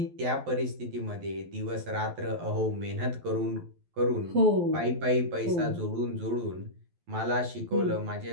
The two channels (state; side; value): late; left; 12 ms